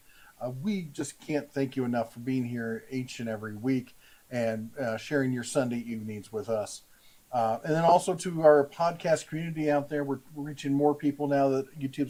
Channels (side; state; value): both; identical; correlation 1.00